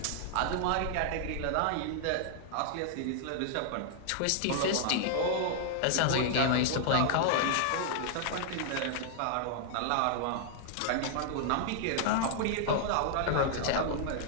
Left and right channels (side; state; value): both; different; correlation -0.01